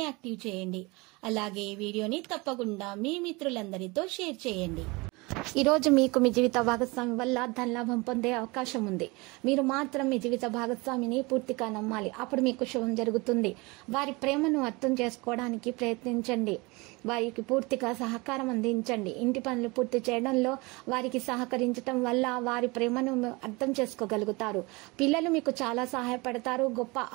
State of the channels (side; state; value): left; quieter; 25.3 dB